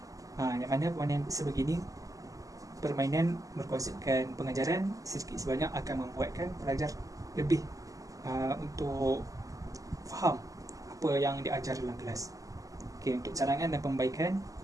Yang mana permainan sebegini, permainan berkonsepkan pengajaran sedikit sebanyak akan membuatkan pelajar lebih untuk faham apa yang diajar dalam kelas. Okey, untuk cadangan dan pembaikan.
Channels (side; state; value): left; late; 0.17 ms